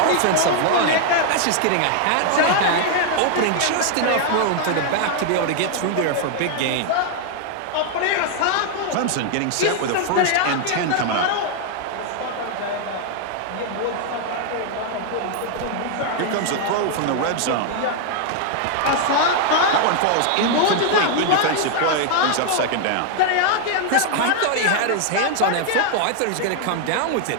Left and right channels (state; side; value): different; both; correlation 0.00